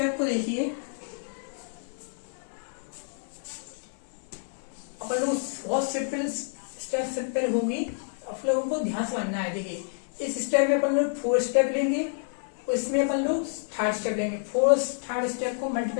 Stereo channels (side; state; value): right; silent; 59 dB below the other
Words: को देखिए, अपन लोग बहुत सिंपल स्टेप सिंपल होगी, आप लोगों को ध्यान से समझना है। देखिए इस स्टेप में अपन लोग 4 स्टेप लेंगे और इसमें अपन लोग 3rd स्टेप लेंगे। 3rd स्टेप को